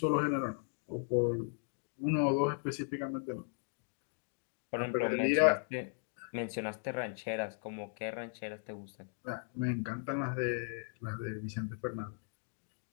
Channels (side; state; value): right; silent; 53 dB below the other